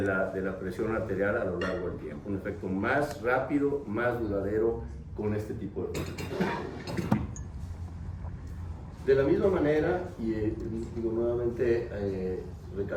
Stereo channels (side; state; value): both; identical; correlation 1.00